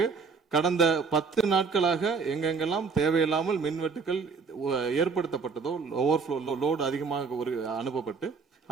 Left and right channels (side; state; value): left; quieter; 5.0 dB